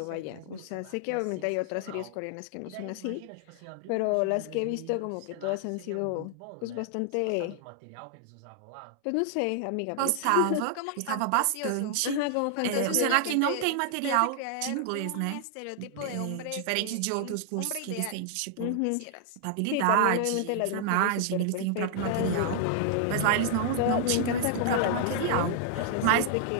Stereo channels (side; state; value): both; different; correlation 0.00